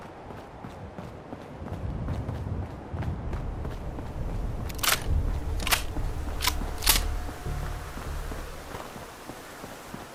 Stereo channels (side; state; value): both; identical; correlation 1.00